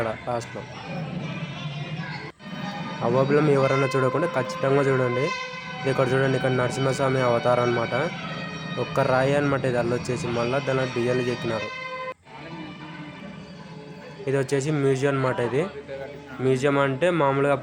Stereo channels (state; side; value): identical; both; correlation 1.00